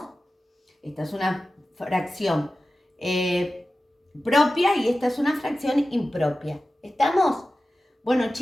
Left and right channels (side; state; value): both; normal; correlation 0.94